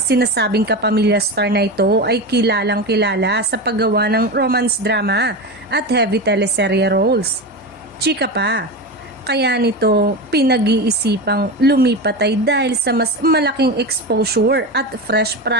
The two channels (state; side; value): normal; both; correlation 0.21